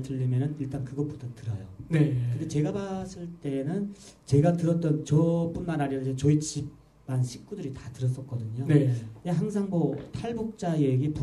들리면은 일단 그것부터 들어요. 네. 근데 제가 봤을 때는 제가 들었던 저뿐만 아니라 이제 저희 집안 식구들이 다 들었었거든요. 네. 항상 뭐 탈북자 얘기,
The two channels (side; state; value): both; identical; correlation 1.00